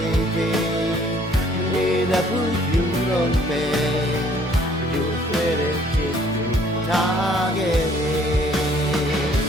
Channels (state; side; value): normal; both; correlation 0.60